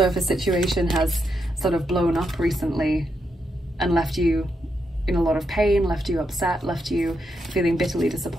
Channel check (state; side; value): normal; both; correlation 0.82